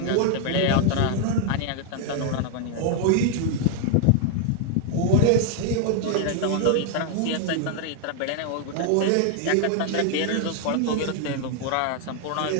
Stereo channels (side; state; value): both; different; correlation 0.00